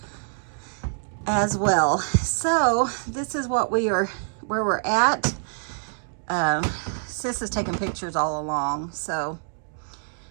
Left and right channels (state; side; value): silent; left; digital silence